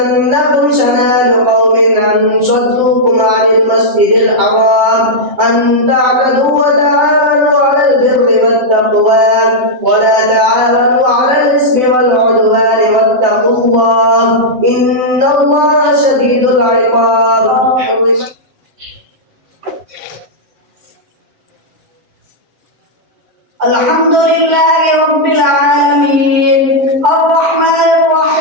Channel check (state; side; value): late; left; 7.9 ms